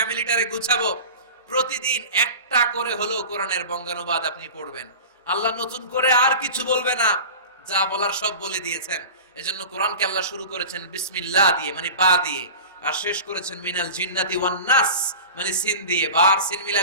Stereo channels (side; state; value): both; inverted; correlation -0.34